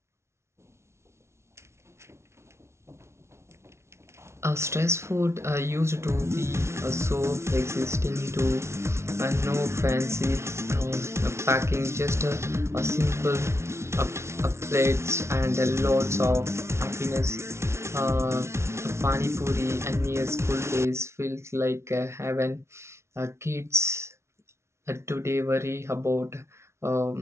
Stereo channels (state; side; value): late; left; 0.13 ms